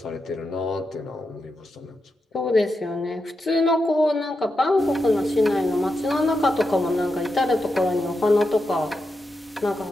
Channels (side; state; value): both; normal; correlation 0.87